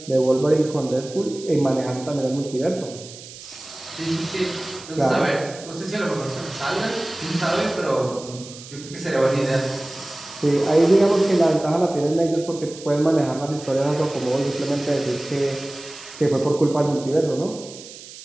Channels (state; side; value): noise; right; hiss, 16 dB below the sound